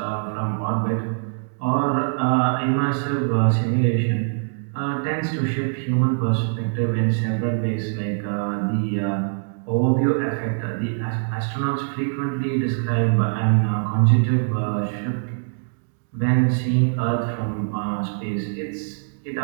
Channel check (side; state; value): left; silent; digital silence